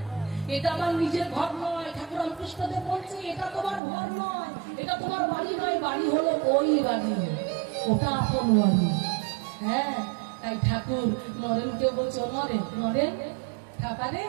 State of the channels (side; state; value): left; drops out; at 3.8 s